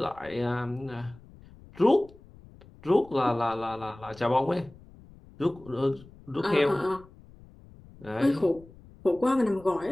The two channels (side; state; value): left; noise; rumble, 22 dB below the sound